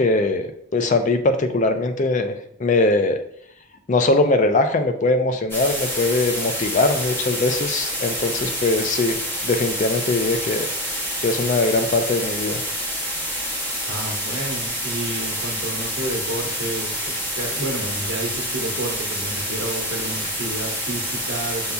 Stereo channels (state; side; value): normal; both; correlation 0.15